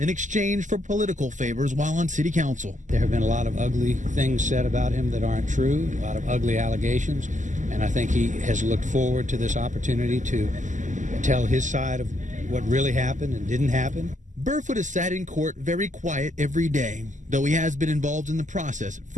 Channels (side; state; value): left; late; 0.36 ms